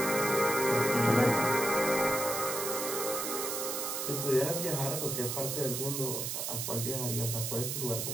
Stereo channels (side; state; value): right; noise; hiss, 2 dB below the sound